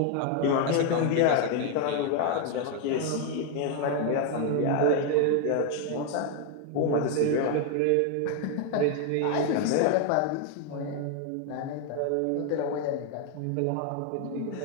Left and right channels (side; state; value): both; different; correlation 0.01